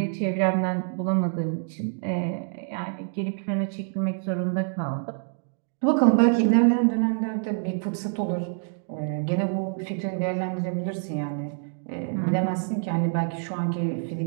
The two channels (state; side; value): silent; left; 61 dB below the other